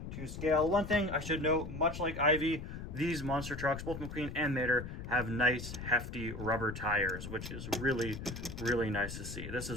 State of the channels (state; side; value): noise; left; rumble, 8 dB below the sound